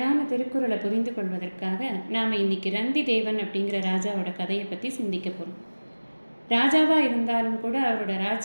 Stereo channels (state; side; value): inverted; both; correlation -1.00